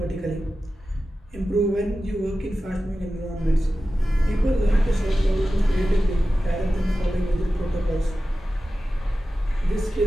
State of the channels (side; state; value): both; normal; correlation 0.94